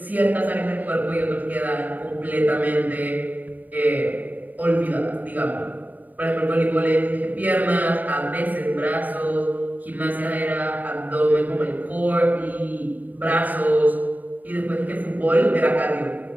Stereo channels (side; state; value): left; late; 0.083 ms